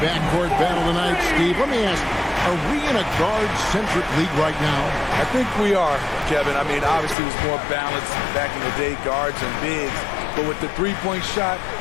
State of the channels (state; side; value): drops out; right; at 7.2 s